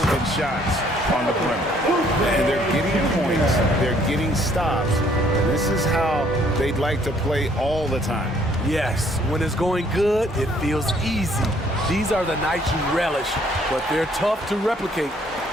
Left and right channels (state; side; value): normal; both; correlation 0.63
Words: shots on the perimeter. And they're getting points, they're getting stops. This is how they'd like to play all the time. Yes, when it's going good, it feels easy. These are the nights you relish, but they're tough to replicate.